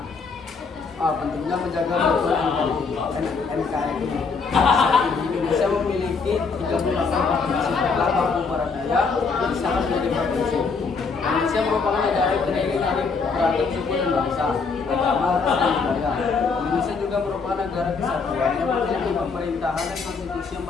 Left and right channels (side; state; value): right; quieter; 4.8 dB